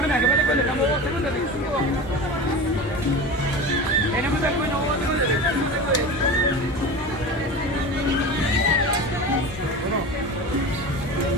que me estamos 2 segundos. Tenemos el bueno 2 segundos.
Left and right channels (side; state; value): both; normal; correlation 0.29